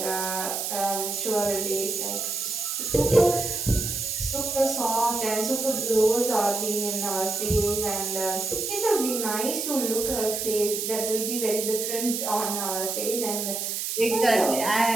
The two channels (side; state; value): right; noise; hiss, 2 dB below the sound